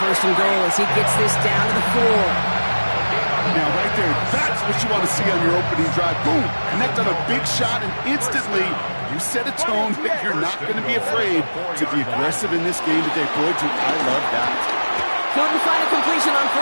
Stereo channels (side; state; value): both; inverted; correlation -1.00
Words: 1st and goal as he gets this down to the 4. Now, right there, that's what you want to see on your opening drive. Boom! Connect on a big shot, and instantly you set a tone that you're not going to be afraid to be aggressive in this game today. Boy, do I love that. Couldn't find a completion on